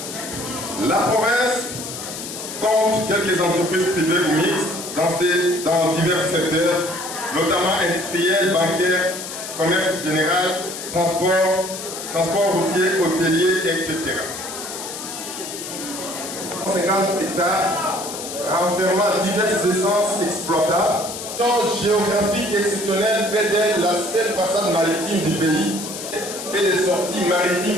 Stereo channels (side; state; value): left; noise; hiss, 9 dB below the sound